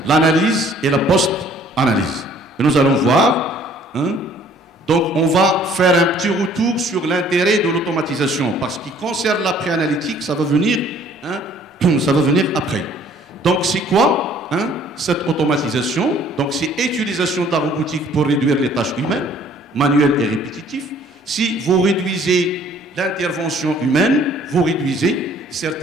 l'analyse et la post-analyse. Et nous allons voir, donc on va faire un petit retour sur l'intérêt de l'automatisation. Parce qu'il concerne la pré-analytique, ça va venir après. Donc, c'est quoi cette automatisation? Donc, c'est utilisation de la robotique pour réduire les tâches humaines, manuelles et répétitives. Si vous réduisez l'intervention humaine, vous réduisez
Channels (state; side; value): normal; both; correlation 0.57